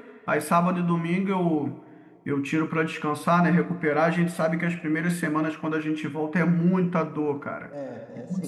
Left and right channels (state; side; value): identical; both; correlation 1.00